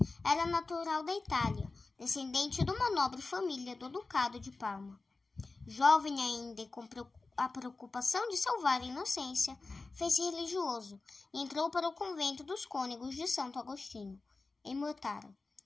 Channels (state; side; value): quieter; right; 3.7 dB